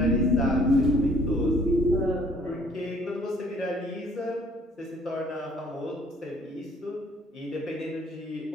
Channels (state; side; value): normal; both; correlation 0.59